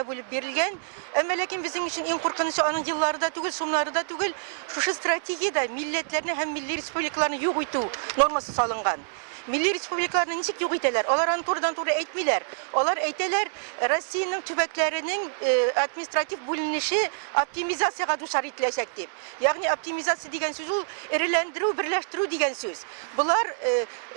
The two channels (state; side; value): silent; left; digital silence